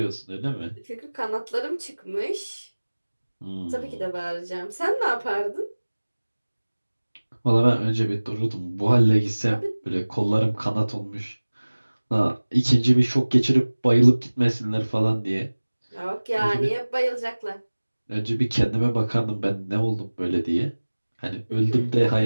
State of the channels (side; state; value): both; inverted; correlation -1.00